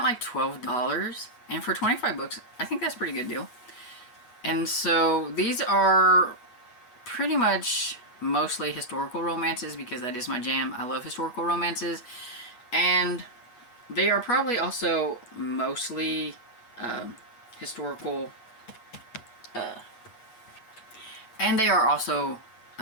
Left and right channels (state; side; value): late; right; 8.3 ms